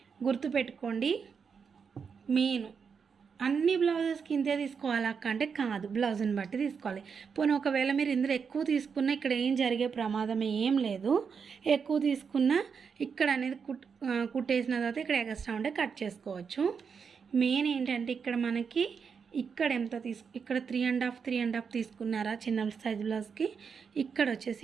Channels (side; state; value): left; quieter; 6.1 dB